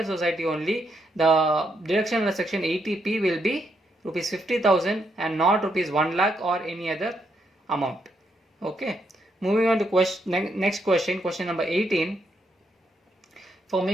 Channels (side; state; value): both; normal; correlation 0.78